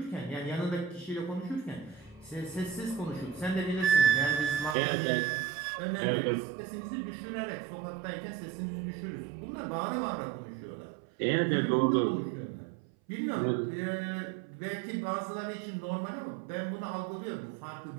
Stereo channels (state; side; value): drops out; left; at 4.8 s